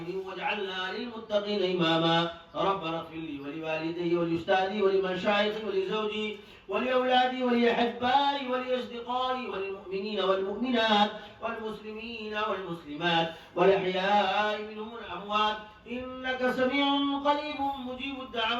واجعلنا للمتقين إماما. ربنا اغفر لي ولوالدي ولأستاذي ولمشايخي ولزوجي ولأولادي ولأحبائي ولأصدقائي وللمؤمنين والمؤمنات والمسلمين والمسلمات والأحياء منهم والأموات إنك سميع قريب مجيب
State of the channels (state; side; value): identical; both; correlation 1.00